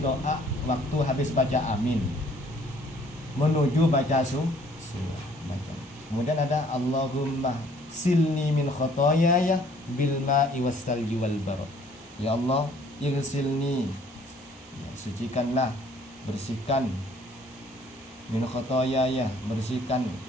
waktu habis baca amin menuju baca baca. Kemudian ada Allahumma silni min khotoyaya bil ma'i wassalji wal barad. Ya Allah, igsilni, ya, sucikanlah, bersihkan, min khotoyaya, bersihkan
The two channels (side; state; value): both; normal; correlation 0.59